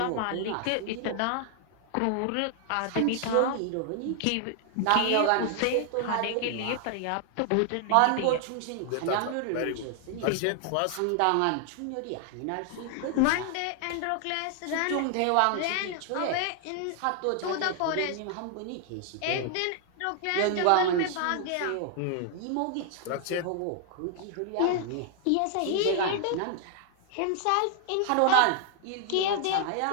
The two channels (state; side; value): different; both; correlation 0.00